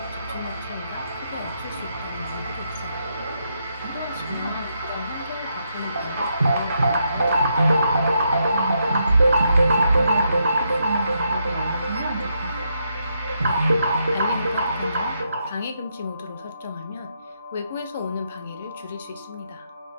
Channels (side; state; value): both; inverted; correlation -0.80